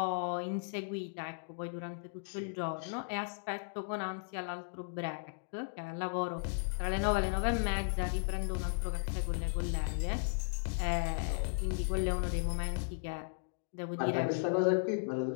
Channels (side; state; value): right; silent; digital silence